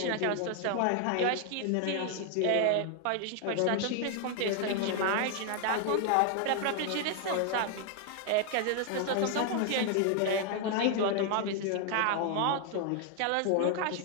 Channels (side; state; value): both; different; correlation 0.00